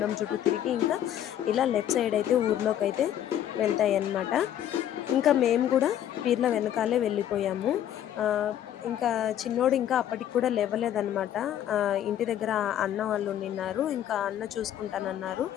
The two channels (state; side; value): quieter; right; 10.9 dB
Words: చుట్టూ తిరిగి ఇంకా ఇలా లెఫ్ట్ సైడ్ అయితే ఊర్లోకి వెళ్తాయి అన్నమాట. ఇంకా మేము కూడా పీర్ల వెనకాలే వెళ్ళిపోయాము. ఇంకా చిన్నోడు ఇంకా అప్పటికి కూడా లేవలేదన్నమాట. ఇంటి దగ్గర అన్న వాళ్ళు ఉండిన్నారు. ఇంకా అన్న చూసుకుంటానన్నారు.